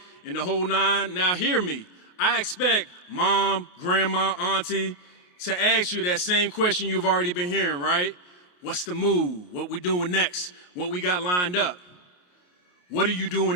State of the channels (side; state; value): right; late; 28 ms